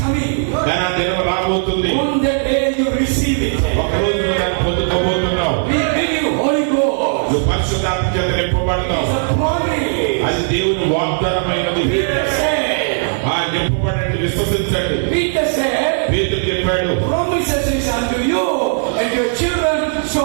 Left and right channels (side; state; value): left; silent; digital silence